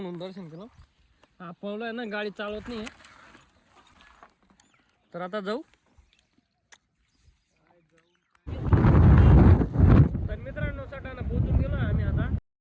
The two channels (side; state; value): both; identical; correlation 1.00